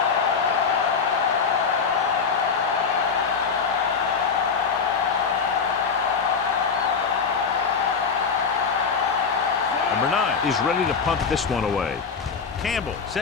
Number 9 is ready to punt this one away. Campbell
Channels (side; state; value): right; quieter; 5.6 dB